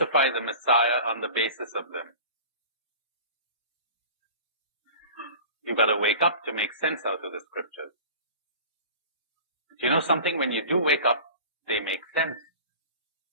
the Messiah on the basis of them. You've got to wake up to make sense out of the scriptures. But you know something? When you do wake up, they make sense.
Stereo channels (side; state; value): both; inverted; correlation -0.38